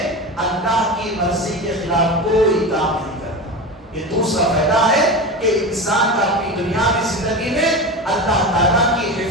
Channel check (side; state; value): both; normal; correlation 0.26